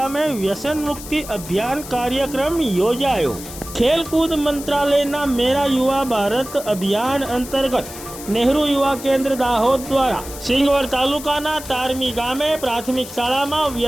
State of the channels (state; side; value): noise; left; hiss, 13 dB below the sound